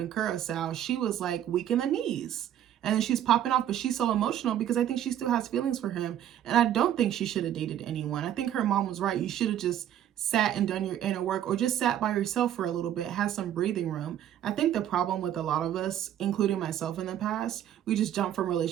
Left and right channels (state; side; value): quieter; left; 10.9 dB